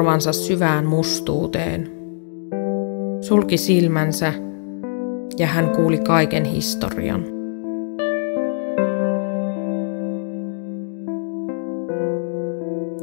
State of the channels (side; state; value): right; silent; 62 dB below the other